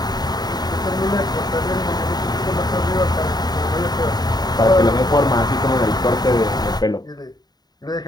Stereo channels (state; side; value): late; right; 0.20 ms